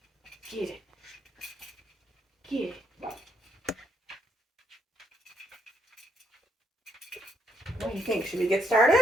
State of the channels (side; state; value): both; normal; correlation 0.74